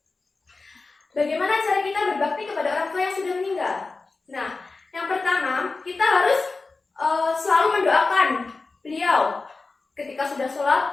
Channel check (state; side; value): quieter; right; 3.8 dB